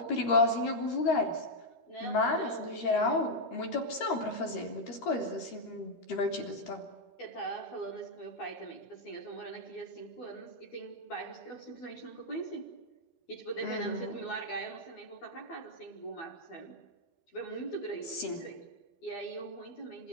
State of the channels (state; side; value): late; right; 13 ms